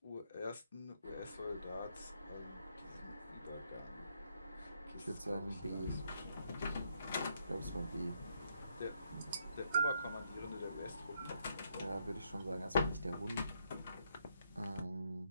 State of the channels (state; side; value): inverted; both; correlation -0.75